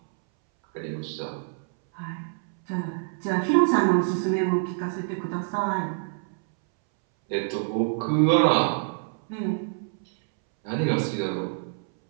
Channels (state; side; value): silent; left; 61 dB below the other